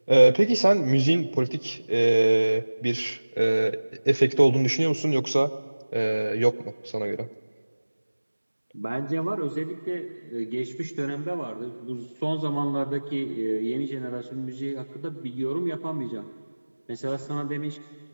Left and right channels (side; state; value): both; inverted; correlation -1.00